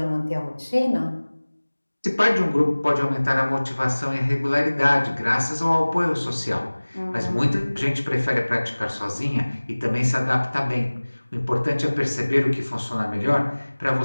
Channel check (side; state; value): both; inverted; correlation -1.00